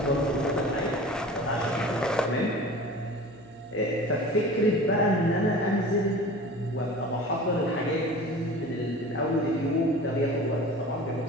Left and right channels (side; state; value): right; noise; hum, 29 dB below the sound